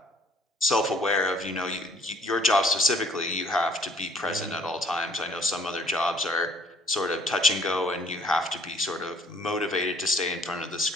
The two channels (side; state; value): both; normal; correlation 0.59